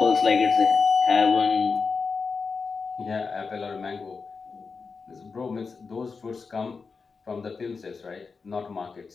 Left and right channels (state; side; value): quieter; right; 4.9 dB